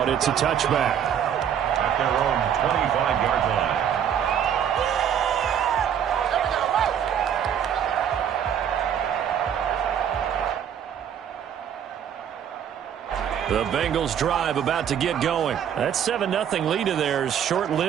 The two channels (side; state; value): left; quieter; 9.0 dB